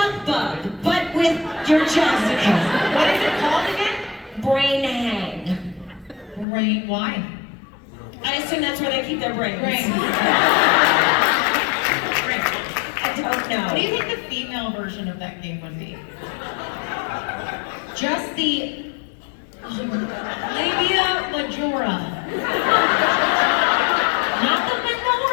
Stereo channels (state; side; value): drops out; right; at 6.5 s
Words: bug, but with your testicles. What is it called again? Brain hang. Brain, why? I assume that's where they keep their brains. Brain. I don't know. What do you think the female version of that game would be? Just the labia majora. Not the